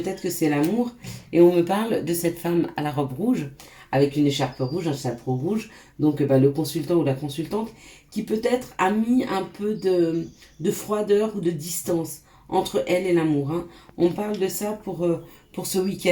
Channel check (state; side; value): identical; both; correlation 1.00